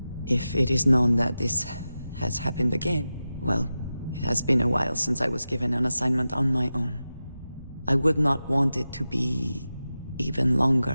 If it is known that this has happened again, well, it has been a while since I was given an assignment on my own. I would not want it to be even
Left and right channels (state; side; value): inverted; both; correlation -0.93